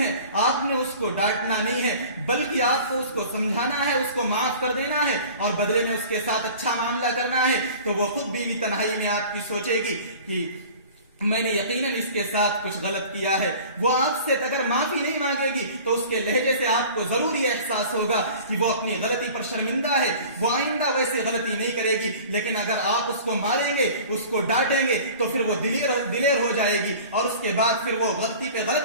ہے، آپ نے اس کو ڈانٹنا نہیں ہے، بلکہ آپ کو اس کو سمجھانا ہے، اس کو معاف کر دینا ہے اور بدلے میں اس کے ساتھ اچھا معاملہ کرنا ہے. تو وہ خود بیوی تنہائی میں آپ کی سوچے گی کہ میں نے یقیناً اس کے ساتھ کچھ غلط کیا ہے. وہ آپ سے اگر معافی نہیں مانگے گی تو اس کے لہجے سے آپ کو ضروری احساس ہوگا کہ وہ اپنی غلطی پر شرمندہ ہے، وہ آئندہ ویسے غلطی نہیں کرے گی. لیکن اگر آپ اس کو ماریں گے، اس کو ڈانٹیں گے تو پھر وہ دلیر ہو جائے گی اور اس کے بعد پھر وہ غلطی پہ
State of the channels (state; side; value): inverted; both; correlation -0.43